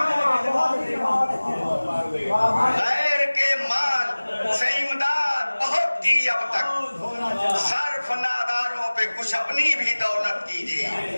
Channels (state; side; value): inverted; both; correlation -1.00